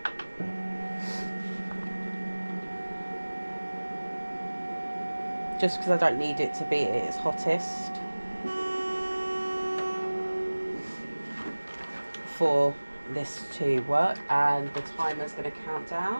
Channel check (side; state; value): both; inverted; correlation -1.00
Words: Just because I don't need it to be at its hottest for this to work. And the timer's going to count